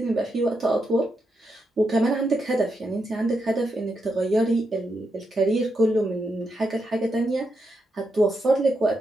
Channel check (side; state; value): both; normal; correlation 0.83